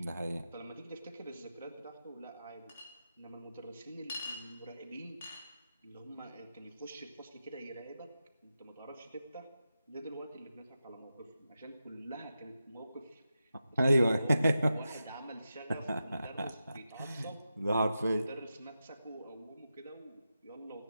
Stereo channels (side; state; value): both; inverted; correlation -0.90